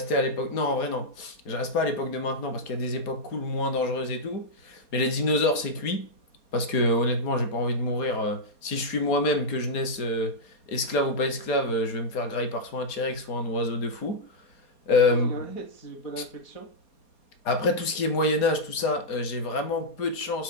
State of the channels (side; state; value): right; late; 4.2 ms